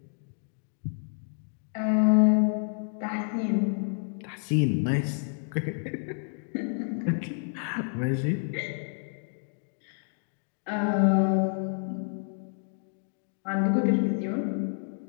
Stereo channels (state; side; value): silent; right; 58 dB below the other